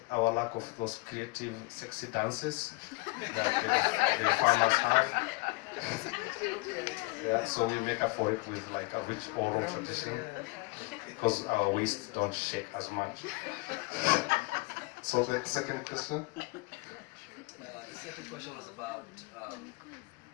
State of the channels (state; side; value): quieter; right; 25.3 dB